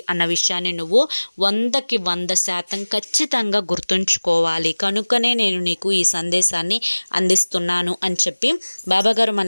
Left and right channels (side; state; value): both; inverted; correlation -1.00